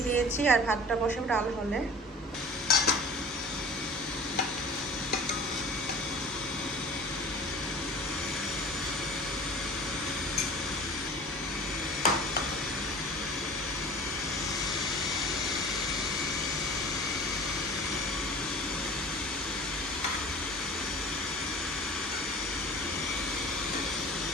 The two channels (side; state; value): both; normal; correlation 0.42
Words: দিয়েছি, আর ভাতটা বসাবো ডাল হলে।